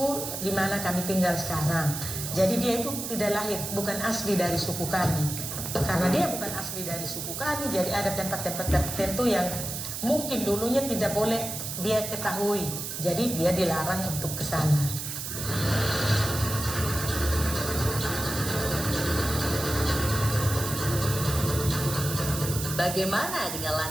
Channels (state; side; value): noise; right; hiss, 5 dB below the sound